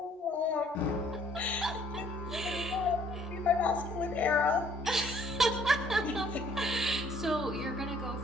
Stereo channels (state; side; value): normal; both; correlation 0.61